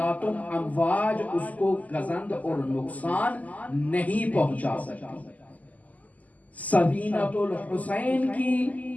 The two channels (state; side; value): late; right; 0.077 ms